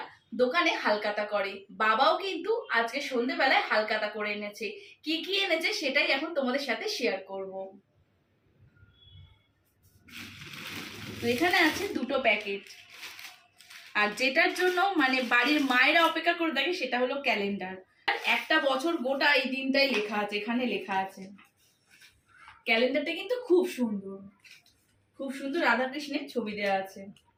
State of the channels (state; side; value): identical; both; correlation 1.00